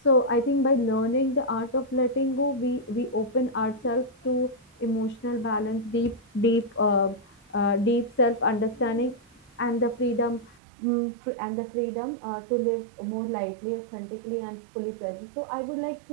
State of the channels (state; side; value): drops out; left; at 10.6 s